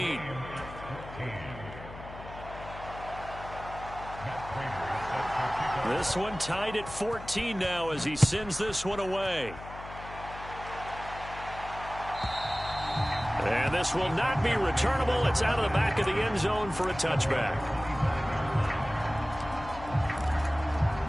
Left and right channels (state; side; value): noise; left; hum, 14 dB below the sound